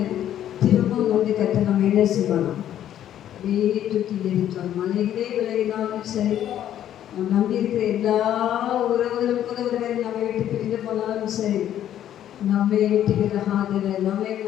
திரும்பவும் வந்து கற்று நம்ம என்ன செய்யணும்? அப்படியே தூக்கி எரித்தோம். மலைகளே விலகினாலும் சரி, நம்ம நம்பி இருக்கிற எல்லா உறவுகளும் கூட ஒருவர் நம்மை விட்டு பிரிந்து போனாலும் சரி, நம்மை விட்டு விலகாதலை, நம்மை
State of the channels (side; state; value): right; quieter; 11.1 dB